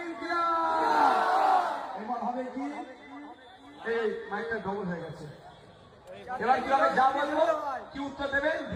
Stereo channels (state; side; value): identical; both; correlation 1.00